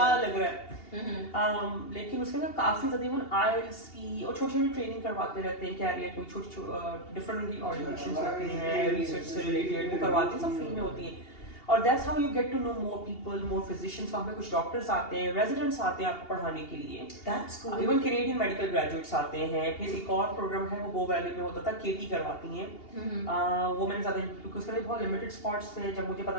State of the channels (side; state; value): right; late; 2.8 ms